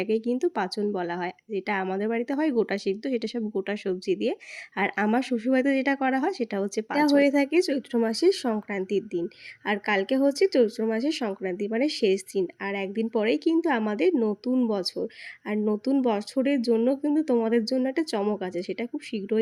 কিন্তু পাঁচন বলা হয়। যেটা আমাদের বাড়িতে হয় গোটা সিদ্ধ, সেটা সব গোটা সবজি দিয়ে। আর আমার শ্বশুরবাড়িতে যেটা করা হয় সেটা হচ্ছে পাঁচন। এটা হয়ে থাকে চৈত্র মাসের সংক্রান্তির দিন। আর কালকে হচ্ছে চৈত্র মাসের সংক্রান্তি, মানে শেষ দিন। আর একদিন পরেই কিন্তু আমাদের নতুন বছর। আর নতুন বছরের জন্য কিন্তু তোমাদের জন্য একটা চমক আছে, সেটা খুব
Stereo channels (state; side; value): identical; both; correlation 1.00